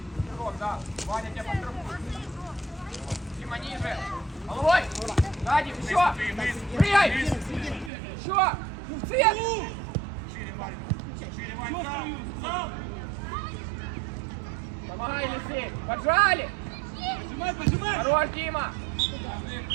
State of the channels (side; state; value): left; drops out; at 7.9 s